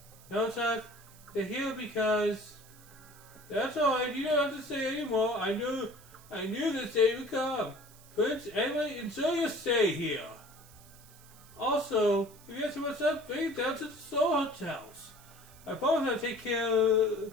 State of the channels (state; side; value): noise; right; hiss, 23 dB below the sound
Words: No, Chuck. They're here because... That's alright, you don't have to say anymore. I knew this day would come. Prince, anyway, enjoy your stay here. Also, if you have too much up, bring it down to the Soul Hotels. I promise I'll take care